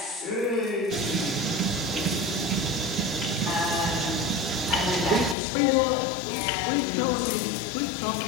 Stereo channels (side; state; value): right; drops out; at 5.4 s